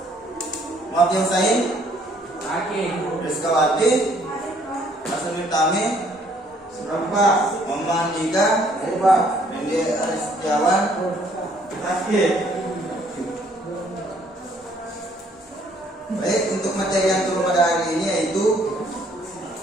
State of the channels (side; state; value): both; normal; correlation 0.63